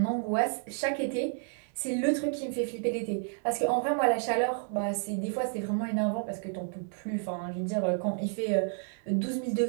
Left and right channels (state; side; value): silent; left; 57 dB below the other